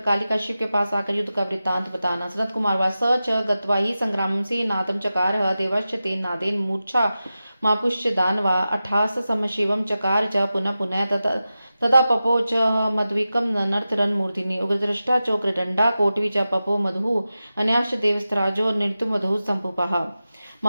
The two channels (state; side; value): inverted; both; correlation -0.93